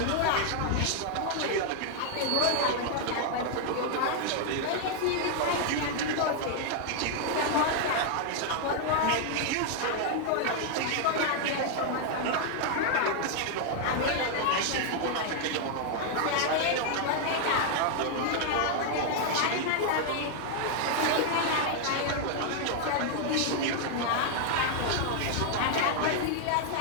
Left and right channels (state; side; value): different; both; correlation 0.00